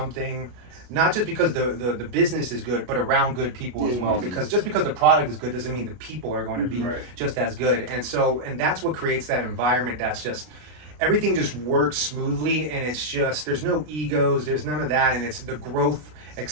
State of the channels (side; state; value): left; late; 33 ms